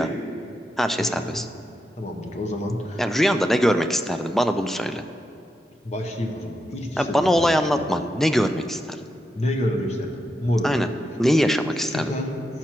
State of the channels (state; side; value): normal; both; correlation 0.85